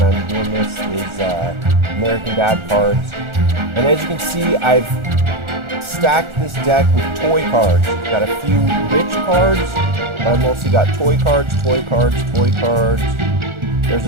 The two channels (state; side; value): late; left; 1.4 ms